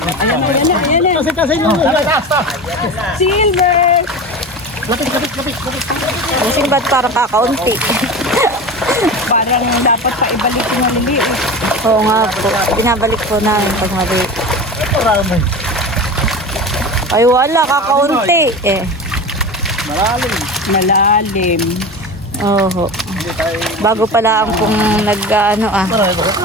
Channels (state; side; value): normal; both; correlation 0.29